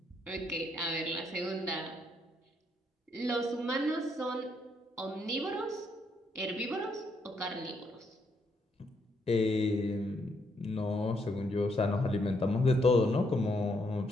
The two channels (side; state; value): both; normal; correlation 0.75